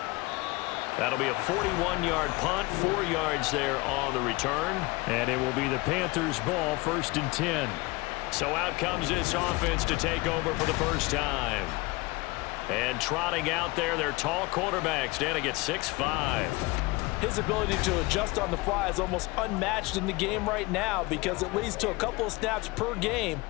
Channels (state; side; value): quieter; right; 23.4 dB